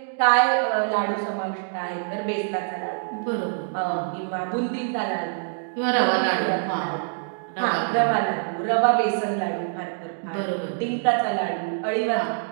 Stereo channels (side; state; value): left; silent; digital silence